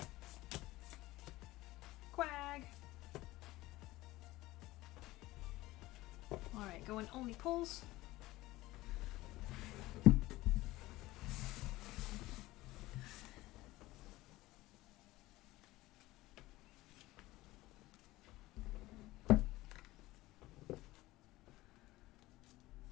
Quag. Alright, going only pulls.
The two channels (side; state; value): right; quieter; 18.4 dB